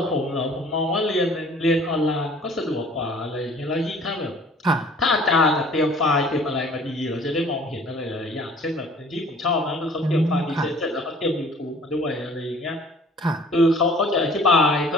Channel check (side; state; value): both; normal; correlation 0.51